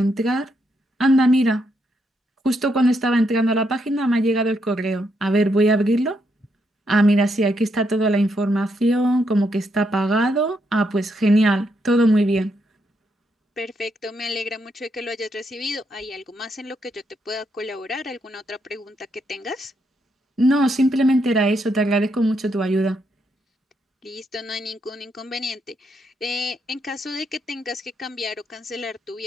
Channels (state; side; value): normal; both; correlation 0.78